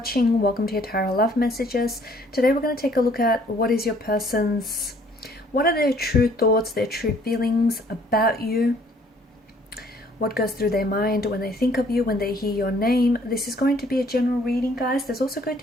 Welcome to your Tarot Love Messages. Today we're going to take a look at what are their true thoughts, their true feelings about you, what goes through their mind when they think of you, when they hear your name. This is going to be a general reading, guys. There's also going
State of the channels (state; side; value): normal; both; correlation 0.60